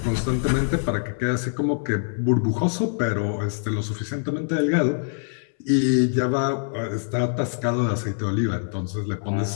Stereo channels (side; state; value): right; silent; 62 dB below the other